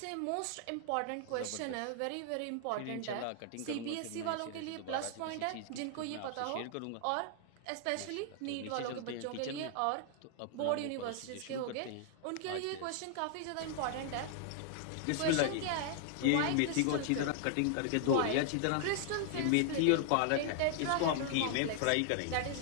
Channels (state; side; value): different; both; correlation 0.00